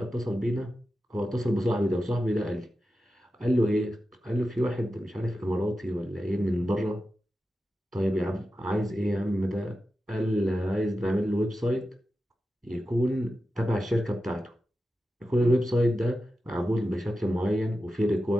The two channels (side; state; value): both; normal; correlation 0.91